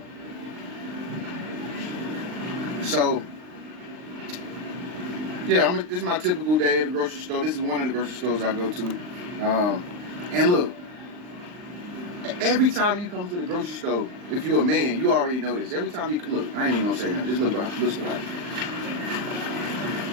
So, yeah, this is my typical day at the grocery store. This is one of the grocery stores I go to. And look, every time you come to the grocery store, if you're a man, you already know this. Every time you look, I ain't even gonna say nothing. Just look behind. Listen to her.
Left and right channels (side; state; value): left; late; 39 ms